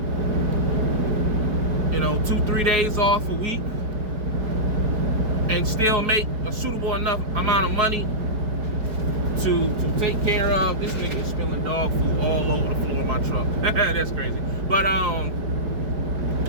you know, 2, 3 days off a week, and still make a suitable enough amount of money to take care of. This nigga is spilling dog food all over the floor of my truck. That's crazy. But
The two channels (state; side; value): late; left; 4.8 ms